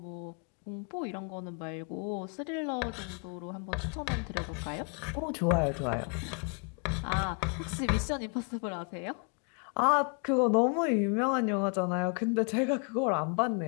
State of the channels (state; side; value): quieter; right; 38.4 dB